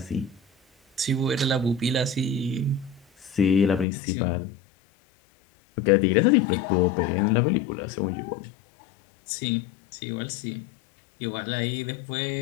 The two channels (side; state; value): right; drops out; at 3.9 s